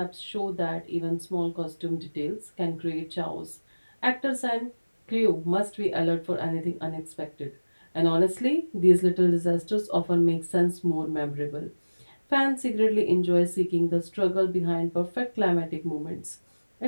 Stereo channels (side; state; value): both; inverted; correlation -1.00